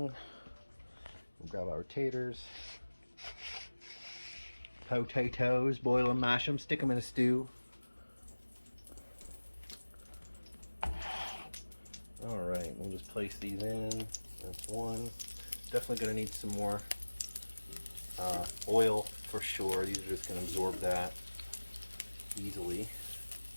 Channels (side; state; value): both; inverted; correlation -1.00